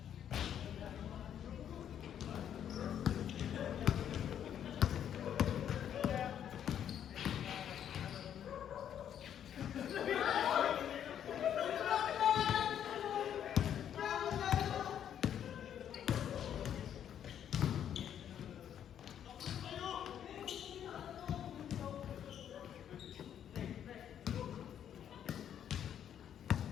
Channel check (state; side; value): quieter; right; 9.6 dB